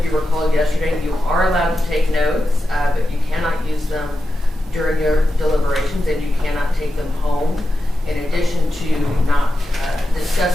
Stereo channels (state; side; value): normal; both; correlation 0.90